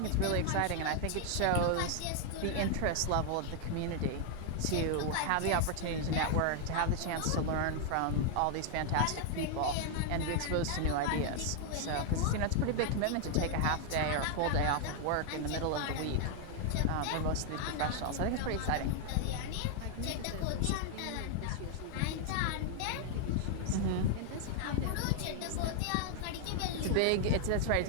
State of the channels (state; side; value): different; both; correlation 0.00